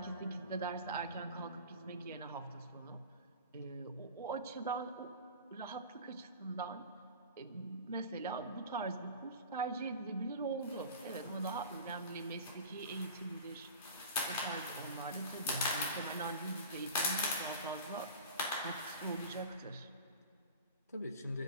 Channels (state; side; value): inverted; both; correlation -0.36